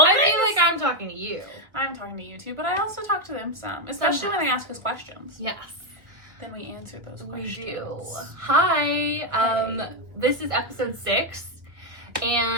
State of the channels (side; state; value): left; late; 1.2 ms